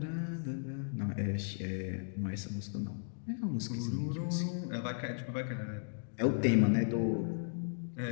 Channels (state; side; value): silent; right; digital silence